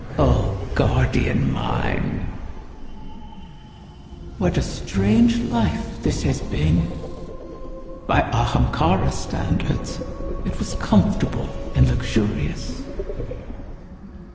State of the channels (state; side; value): identical; both; correlation 1.00